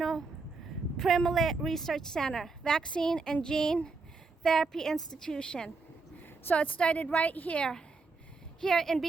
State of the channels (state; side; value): quieter; left; 4.1 dB